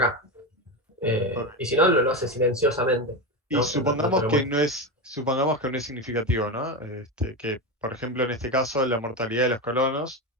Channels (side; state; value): both; normal; correlation 0.16